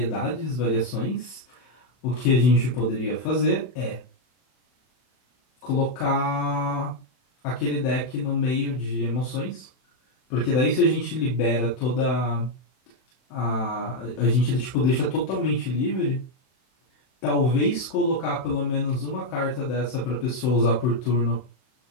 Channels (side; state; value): right; late; 31 ms